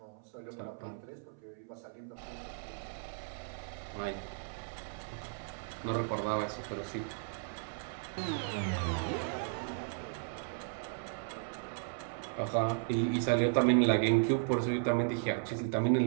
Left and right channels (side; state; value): left; silent; 54 dB below the other